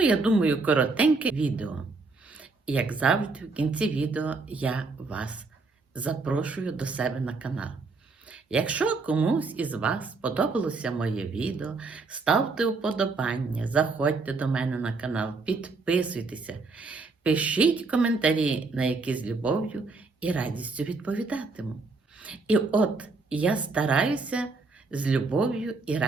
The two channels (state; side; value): quieter; left; 3.9 dB